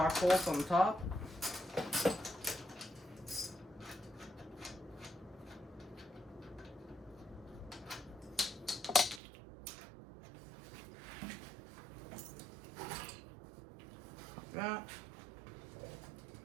bolts on the top. Like that.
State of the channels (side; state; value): left; drops out; at 9.2 s